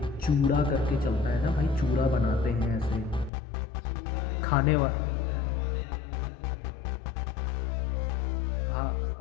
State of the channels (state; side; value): drops out; right; at 3.3 s